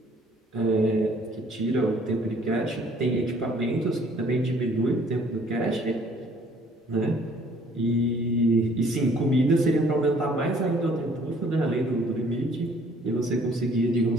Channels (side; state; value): both; normal; correlation 0.59